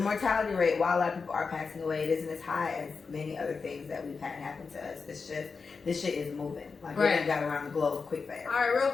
rate, while a lot of people are passing away, it isn't as high as many other things that we've had happen to us. It's just, this shit is moving. Like, it got around the globe quick fast. All right, real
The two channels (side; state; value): right; quieter; 4.9 dB